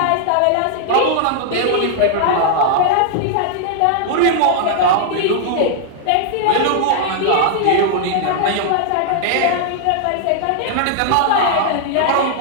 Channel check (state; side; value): different; both; correlation -0.01